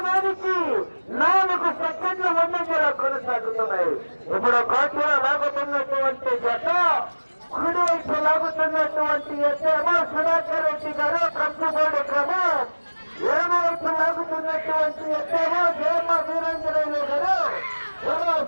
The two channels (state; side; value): inverted; both; correlation -1.00